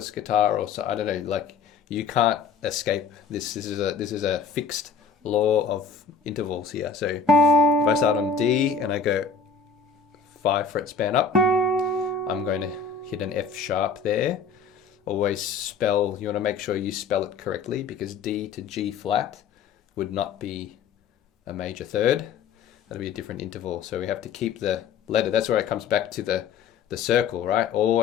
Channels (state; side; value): quieter; right; 5.7 dB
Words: guitar or so, I don't know, like you can't escape this. This is a fixed law of intervals here. So if I start on D and I go 5-fret span up, I'm going to hit an F sharp there. Always spell, you want to make sure you spell it correctly, because D to G flat would not be a major third. That'll be a different interval. So we have to keep the letter. That's where it comes back to the circle, right?